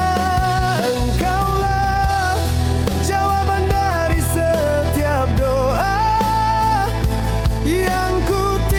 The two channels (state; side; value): identical; both; correlation 1.00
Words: Engkaulah jawaban dari setiap doa yang ku